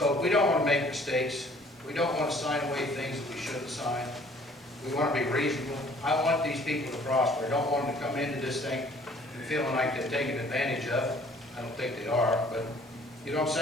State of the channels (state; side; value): normal; both; correlation 0.56